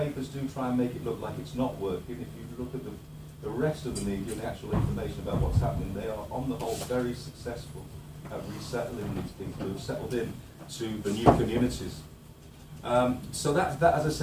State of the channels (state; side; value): identical; both; correlation 1.00